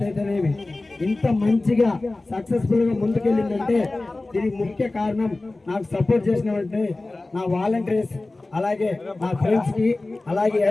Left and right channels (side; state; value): right; quieter; 3.0 dB